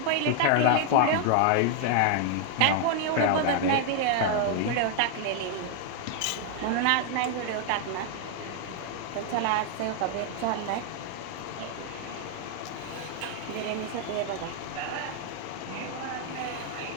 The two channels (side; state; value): both; different; correlation 0.00